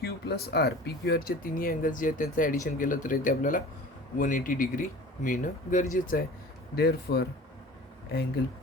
Q plus R, PQRचे तिन्ही अँगल्स जे आहेत त्यांचं ॲडिशन केलं तर इथे आपल्याला 180 डिग्री मिळणं गरजेचं आहे. Therefore angle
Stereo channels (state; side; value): normal; both; correlation 0.41